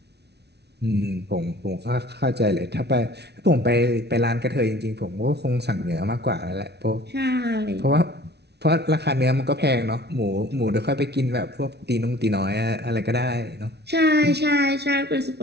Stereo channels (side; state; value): left; late; 0.49 ms